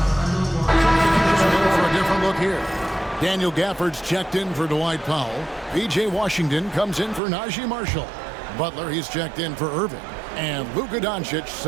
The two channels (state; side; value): drops out; left; at 7.2 s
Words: Daniel Gafford's checked in for Dwight Powell. P.J. Washington comes in for Najee Marshall. Butler, he's checked in for Irving. And Luka Doncic